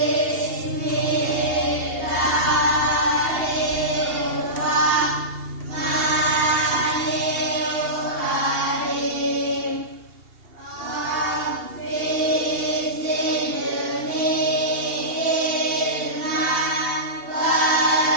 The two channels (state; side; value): late; left; 2.7 ms